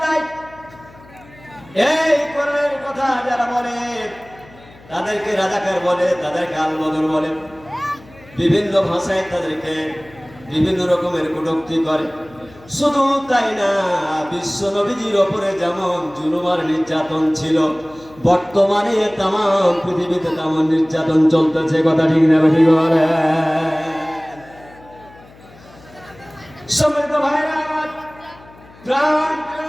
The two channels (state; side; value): noise; left; hum, 24 dB below the sound